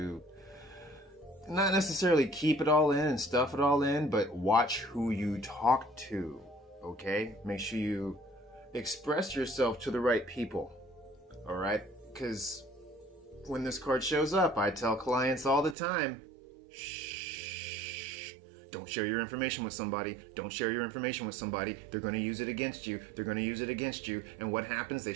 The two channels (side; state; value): left; drops out; at 15.8 s